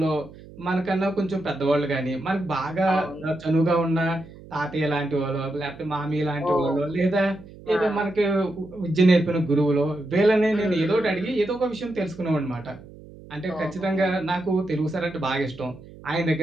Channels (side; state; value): right; noise; hum, 19 dB below the sound